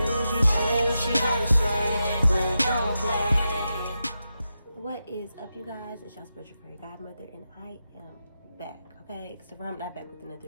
what you gotta say, but don't play. What is up, you guys? It's your spiritual fairy godmother, and I am back, okay? Except for I'm not back with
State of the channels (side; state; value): both; inverted; correlation -0.89